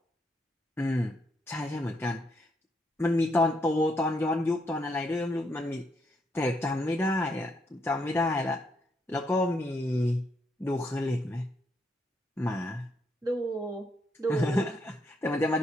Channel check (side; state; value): both; normal; correlation 0.76